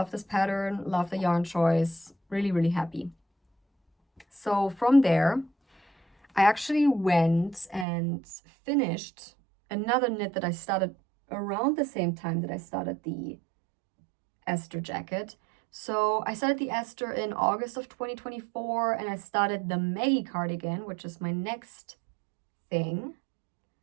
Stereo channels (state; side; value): drops out; left; at 7.9 s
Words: this pattern, love the yarn choice, really, really happy. So from there, I actually went and finished another knit that I started around the same time that I started the Esther jacket. So I started the Esther in August of 2024, and I started the Maggie cardigan, which is my next thing.